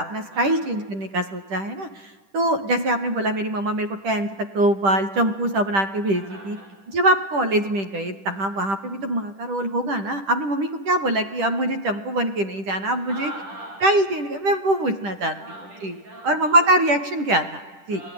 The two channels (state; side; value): late; left; 10 ms